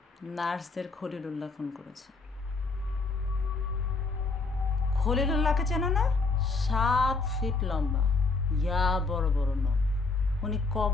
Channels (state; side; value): quieter; right; 3.9 dB